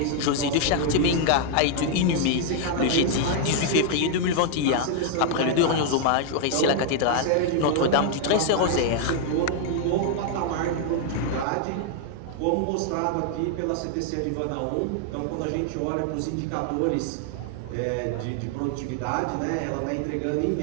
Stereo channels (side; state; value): both; different; correlation 0.00